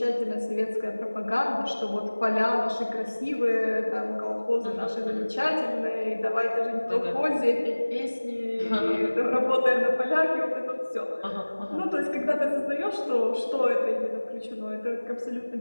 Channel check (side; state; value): both; inverted; correlation -1.00